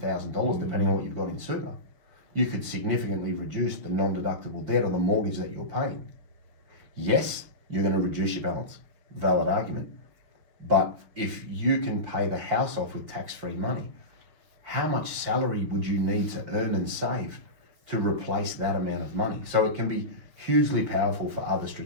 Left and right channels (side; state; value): left; late; 6.4 ms